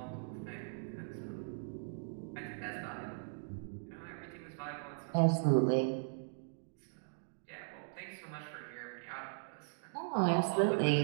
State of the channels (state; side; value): silent; left; digital silence